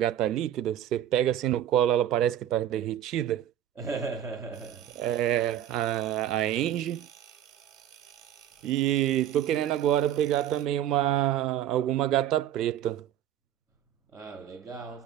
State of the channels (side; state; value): left; quieter; 11.4 dB